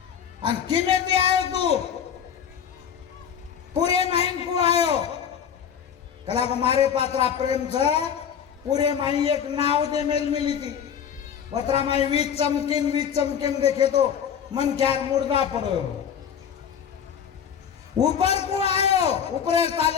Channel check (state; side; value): quieter; right; 8.2 dB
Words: अन किमे थी आयो तू पूरे माइन को आयो कला को मारे पात्रा प्रेम छ पूरे माई एक नाव दे मेल मिली थी पत्रा माई वीज चमकिन देखे तो मन ख्यार मुर्दा पड़ो ऊपर को आयो ऊपर